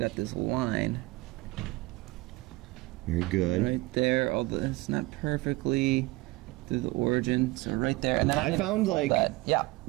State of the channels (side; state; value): left; quieter; 21.7 dB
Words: this line Very good. right there, although it's not perfectly through the origin, so right there. And then I can found, fold like- that. Yeah.